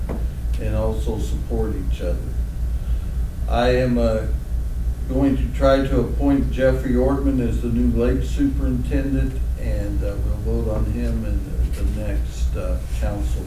and also support each other. I am going to try to appoint Jeffrey Ortman as the new lake superintendent, and we'll vote on him in the next council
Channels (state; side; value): identical; both; correlation 1.00